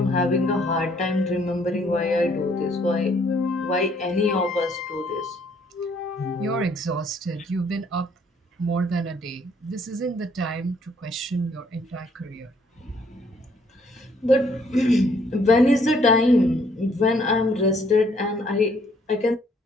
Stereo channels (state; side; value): normal; both; correlation 0.65